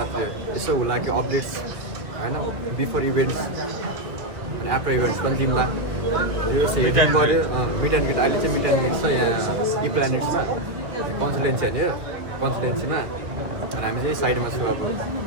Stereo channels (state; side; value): late; left; 1.8 ms